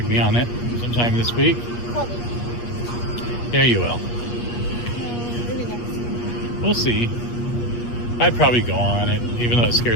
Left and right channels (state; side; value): late; right; 8.4 ms